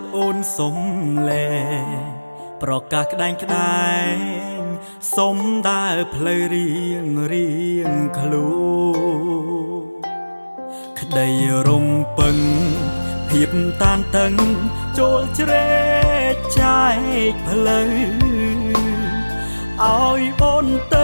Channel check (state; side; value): inverted; both; correlation -1.00